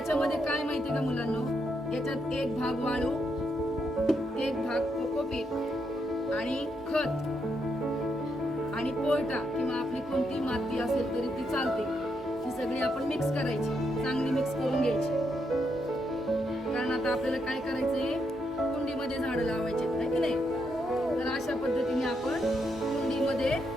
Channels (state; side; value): normal; both; correlation 0.79